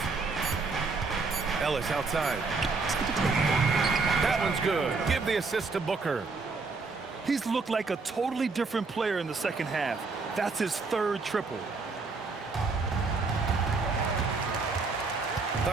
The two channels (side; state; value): left; quieter; 4.2 dB